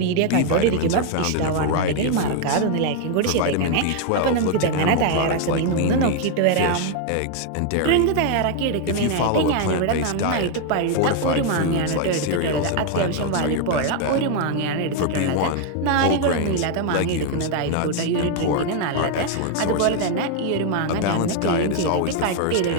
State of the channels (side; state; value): both; different; correlation 0.01